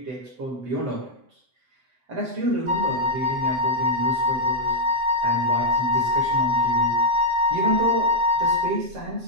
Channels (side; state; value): left; late; 7.8 ms